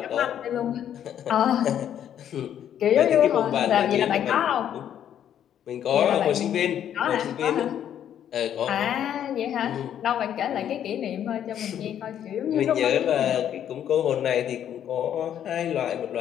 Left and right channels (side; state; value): right; quieter; 10.0 dB